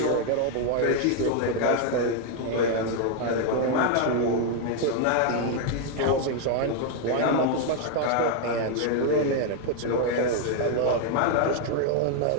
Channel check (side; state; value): both; different; correlation 0.00